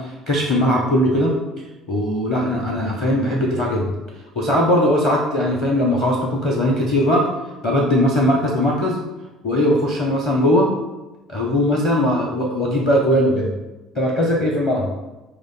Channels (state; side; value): normal; both; correlation 0.44